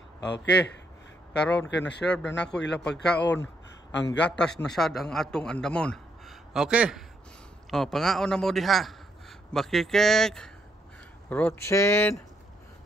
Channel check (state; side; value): normal; both; correlation 0.74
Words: Okay, karon kay na-serve na nako ilang pagkaon, ang gatas na sad ang atong andamon. Okay, pangaon na mo diha Bakikik, Rotsin.